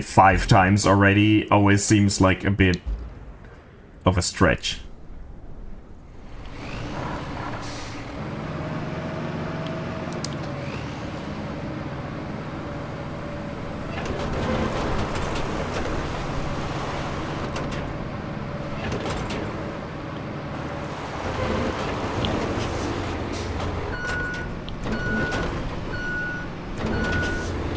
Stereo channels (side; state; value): both; identical; correlation 1.00